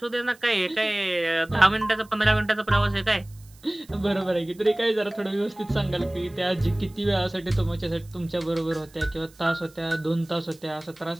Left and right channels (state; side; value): noise; right; hiss, 27 dB below the sound